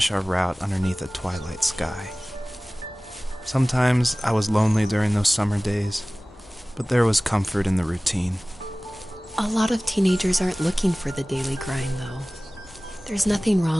our route underneath a twilight sky. Sometimes I was lonely during those summer days, but there was comfort in the routine. A lot of teenagers aren't looking for the daily grind, though. There's nothing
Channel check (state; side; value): normal; both; correlation 0.98